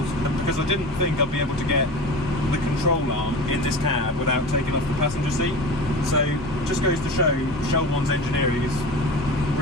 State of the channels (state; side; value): normal; both; correlation 0.32